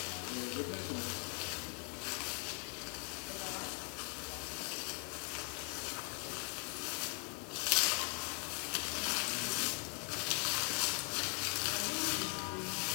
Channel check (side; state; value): right; quieter; 35.1 dB